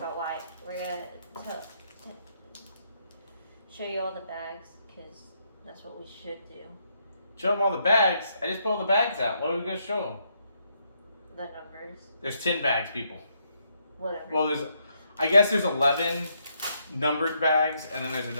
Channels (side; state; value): both; inverted; correlation -0.76